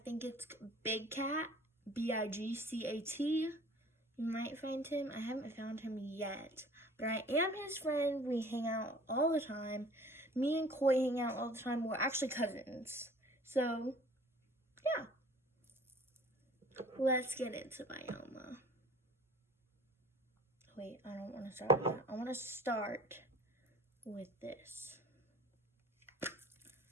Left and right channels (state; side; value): normal; both; correlation 0.48